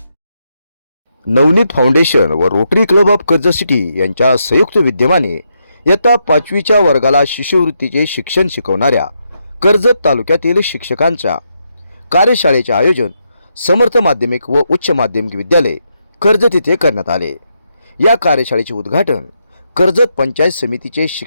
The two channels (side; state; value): both; inverted; correlation -0.81